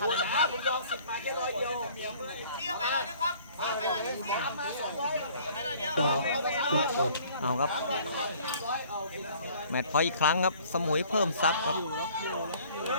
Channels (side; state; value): both; inverted; correlation -0.54